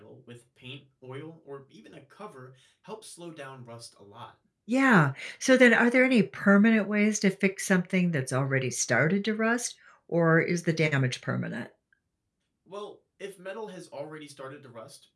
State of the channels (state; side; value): identical; both; correlation 1.00